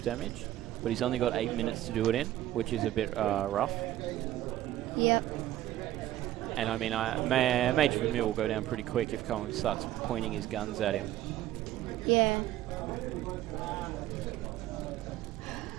damage. But he's only got 8 minutes to do it in, which is a bit rough. Yep. And I mean, Major Vermeil will go down pretty quick if Cohan starts pointing his guns at him. Yeah.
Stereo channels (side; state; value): left; quieter; 13.8 dB